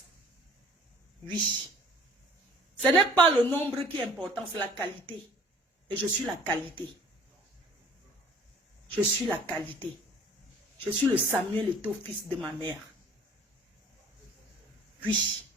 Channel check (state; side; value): normal; both; correlation 0.50